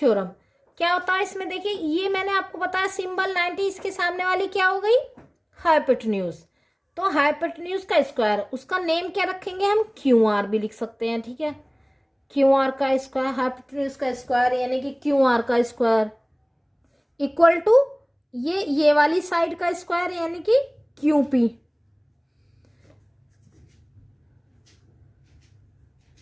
क्या होता है इसमें, देखिए ये मैंने आपको बताया सिंबल 90, इसके सामने वाली क्या हो गई हाइपोटेन्यूज, तो हाइपोटेन्यूज का स्क्वायर, उसका नेम क्या रखेंगे हम, क्यू आर भी लिख सकते हैं। ठीक है, क्यू आर का स्क्वायर, हाइपोटेन्यूज का स्क्वायर यानी कि क्यू आर का स्क्वायर इक्वल टू ये वाली साइड का स्क्वायर यानी कि क्यू पी,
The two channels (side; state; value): both; identical; correlation 1.00